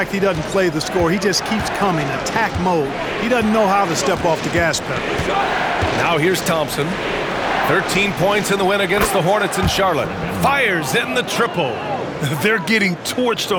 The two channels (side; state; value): both; identical; correlation 1.00